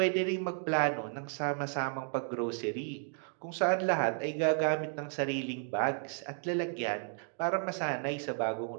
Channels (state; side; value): silent; left; 56 dB below the other